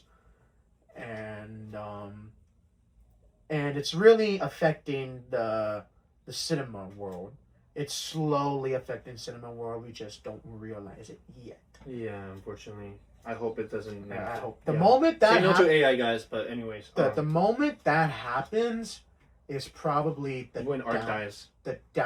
and it's really affecting the cinema world. It's slowly affecting cinema world. We just don't realize it yet. Yeah, unfortunately. I hope it doesn't. I hope the moment that Say no to AI, guys, but anyways. the moment that happens is probably when art dies. the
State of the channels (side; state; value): both; identical; correlation 1.00